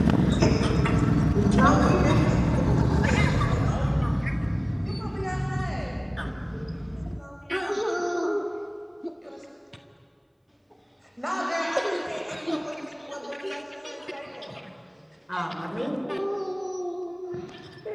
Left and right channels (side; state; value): both; identical; correlation 1.00